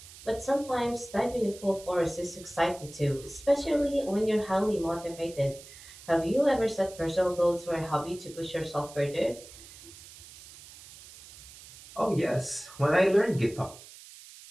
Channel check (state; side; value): noise; right; hiss, 18 dB below the sound